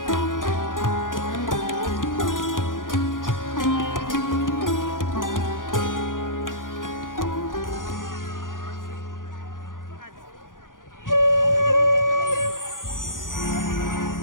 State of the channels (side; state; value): right; late; 0.89 ms